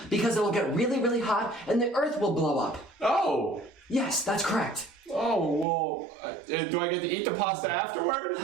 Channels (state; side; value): drops out; left; at 5.7 s